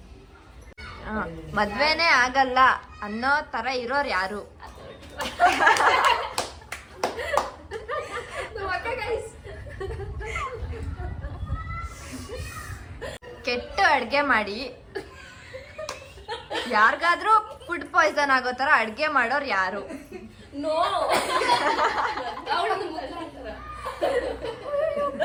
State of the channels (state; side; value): identical; both; correlation 1.00